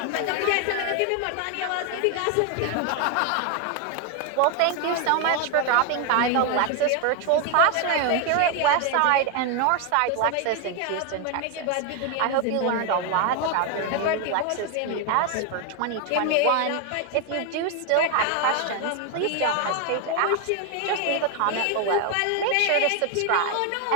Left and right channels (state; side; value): different; both; correlation 0.01